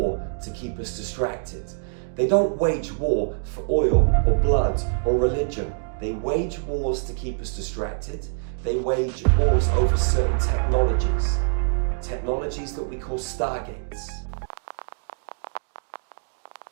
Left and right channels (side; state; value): left; silent; digital silence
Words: to keep us distracted. They don't wage war for oil or blood or religion. They wage wars to keep us distracted. They wage wars over certain technologies. Technologies that we call stargates.